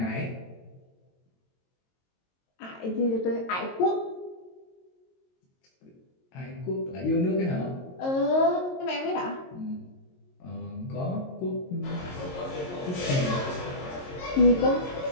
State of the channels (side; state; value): right; late; 22 ms